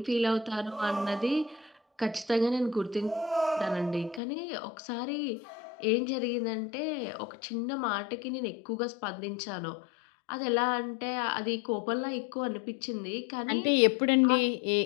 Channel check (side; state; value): right; drops out; at 4.2 s